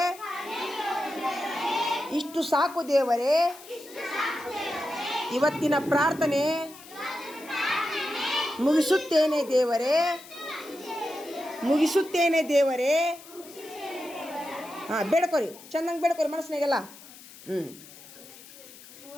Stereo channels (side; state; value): left; noise; hiss, 19 dB below the sound